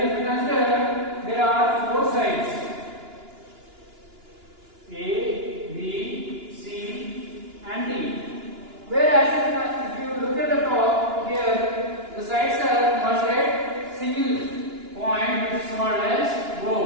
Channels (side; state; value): left; late; 2.9 ms